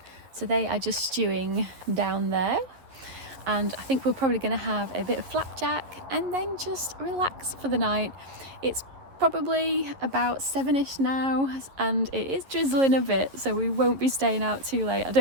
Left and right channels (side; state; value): left; late; 11 ms